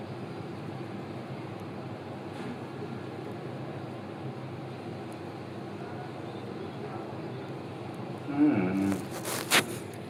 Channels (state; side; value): identical; both; correlation 1.00